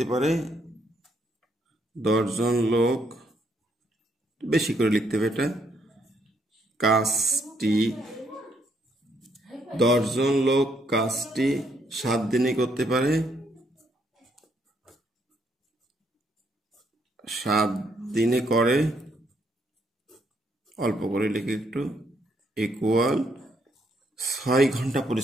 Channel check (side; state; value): both; normal; correlation 0.73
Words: পারে। 10 জন লোক, বেশি করে লিখতে হবে এটা, কাজটি 10 জন লোক কাজটি 7 দিনে করতে পারে। 7 দিনে করে, অল্প করে লিখে একটু, ইকুয়াল 6 ঘন্টা